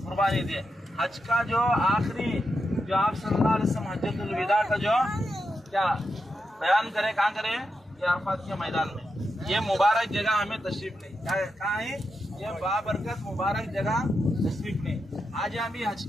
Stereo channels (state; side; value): normal; both; correlation 0.86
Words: कुर्बानी दिए। हज का जो आखिरी जो आप सल्लल्लाहु अलैहि वसल्लम हज्जतुल विदा का जो क्या बयान करे, कहाँ करे? ये अरफात के मैदान में। ये मुबारक जगह हमें तशरीफ नहीं, कहाँ है? ये बाबरकत मुबारक जगह तशरीफ नहीं। आज हम भी हज